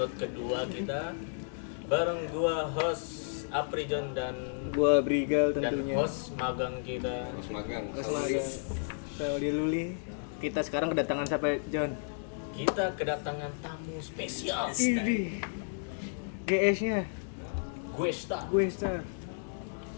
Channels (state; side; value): silent; right; digital silence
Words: kedua kita bareng gua host Apri John dan Gua Brigal dan tentunya. host magang kita. Mas magang Saudi Luli. Kita sekarang kedatangan siapa, John? Kita kedatangan tamu spesial. Ini. GS-nya. Guesta. Gue Star.